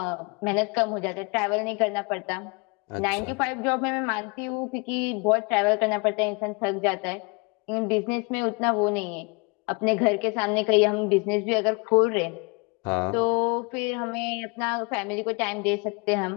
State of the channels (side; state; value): right; quieter; 30.6 dB